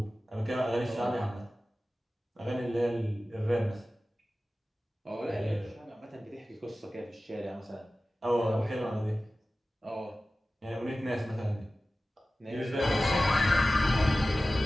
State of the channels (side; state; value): both; normal; correlation 0.96